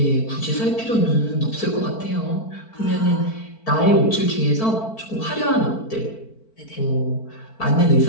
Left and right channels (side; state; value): right; late; 4.5 ms